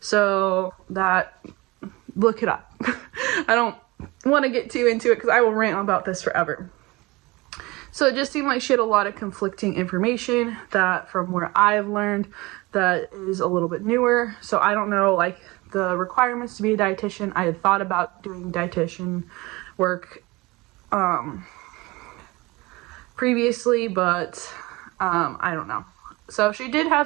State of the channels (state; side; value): quieter; left; 22.7 dB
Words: that, look it up. I don't want to get too into it because I will rant about this forever. So it just seemed like she had a lot of conflicting information that, from where I've learned, that is a little bit newer. So I don't know, like, the requirements to be a dietitian. I had thought about doing dietitian work previously, but I don't know. So she did